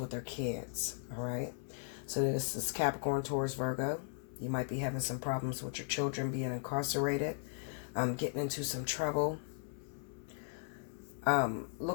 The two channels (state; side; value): silent; right; 53 dB below the other